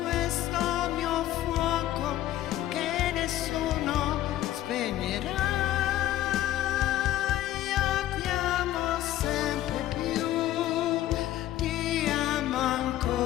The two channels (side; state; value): right; quieter; 13.9 dB